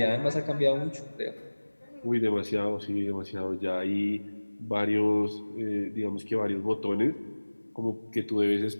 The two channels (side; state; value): both; inverted; correlation -1.00